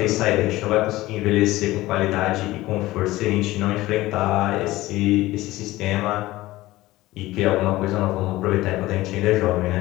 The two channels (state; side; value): quieter; right; 17.7 dB